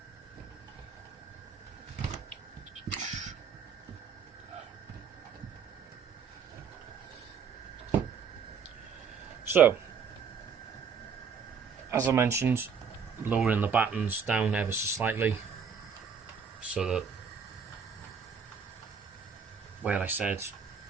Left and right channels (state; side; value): quieter; left; 6.3 dB